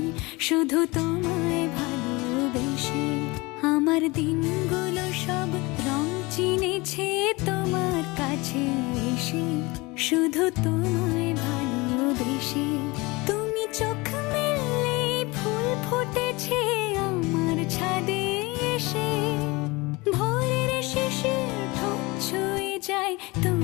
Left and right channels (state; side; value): quieter; right; 24.0 dB